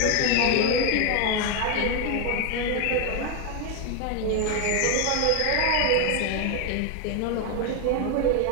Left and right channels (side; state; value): both; different; correlation 0.01